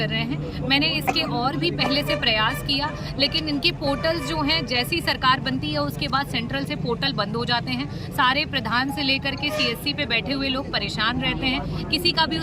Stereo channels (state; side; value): identical; both; correlation 1.00